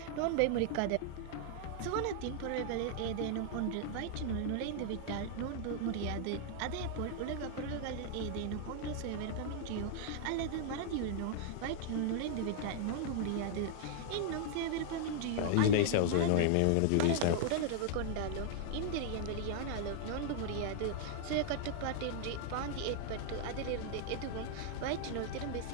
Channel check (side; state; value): both; different; correlation -0.01